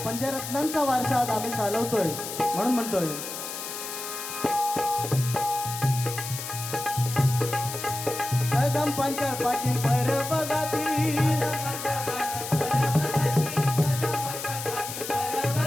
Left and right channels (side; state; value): left; noise; hiss, 7 dB below the sound